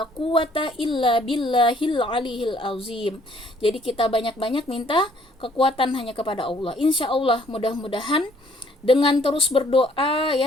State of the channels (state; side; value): normal; both; correlation 0.62